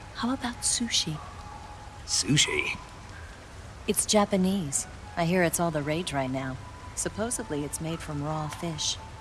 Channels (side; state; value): both; identical; correlation 1.00